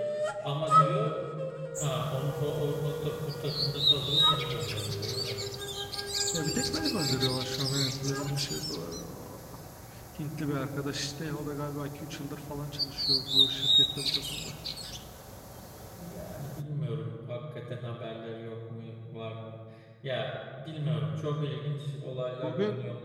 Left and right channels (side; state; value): both; identical; correlation 1.00